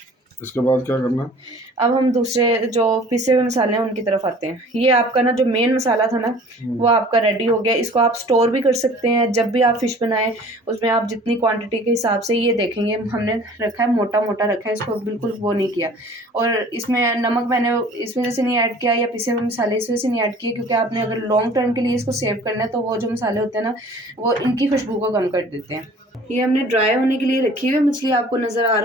इसके बाद क्या करना है? अब हम दूसरे जो पिसे हुए मसाले हैं उनकी तरफ आते हैं। ये आपका ना जो मेन मसाला था ना वो आपका रेडी हो गया। इसको आप स्टोर भी कर सकते हैं। जब भी आप फिश बनाएं उसमें आप जितनी क्वांटिटी के हिसाब से ये देखेंगे हमने रखा है मोटा मोटा रखा है, इसको बिल्कुल वो नहीं किया। और इसमें नमक मैंने इस वजह से नहीं ऐड किया या पिसे हुए मसाले इस वजह से नहीं ऐड किए क्योंकि आपने अगर लॉन्ग टर्म के लिए इसको सेव करना है तो वो जो मसाले होते हैं ना वो इनकी खुशबू को कम कर देते हैं। ये हमने ड्राई होने के लिए रखी हुई मछली। आपको नज़र आ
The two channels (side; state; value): both; normal; correlation 0.48